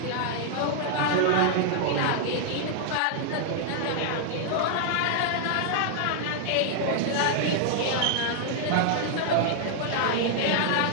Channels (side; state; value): both; different; correlation 0.00